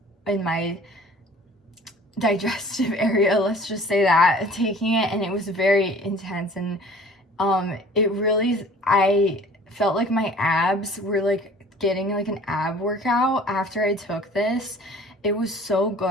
in my digestive area, let's just say that, taking it, and it was very intense. And it really, I felt like my abs were like getting like an ab workout after I took this. It was so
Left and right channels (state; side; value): normal; both; correlation 0.48